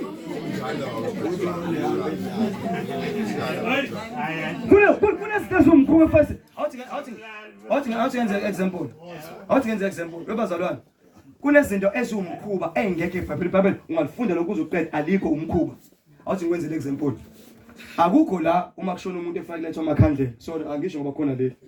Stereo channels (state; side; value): identical; both; correlation 1.00